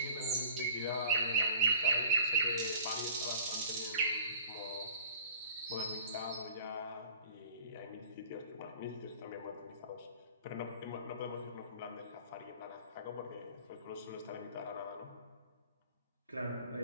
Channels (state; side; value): inverted; both; correlation -0.46